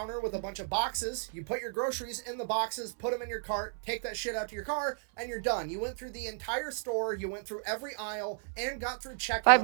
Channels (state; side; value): silent; left; 55 dB below the other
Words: with a bunch of boxes. You put your groceries in the boxes, put them in your cart, take that shit out to your car, and you're done. You went through the entire store, you went through every aisle, and got through Five checkout in